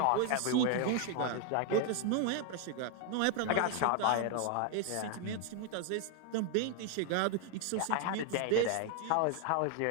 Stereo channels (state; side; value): different; both; correlation 0.00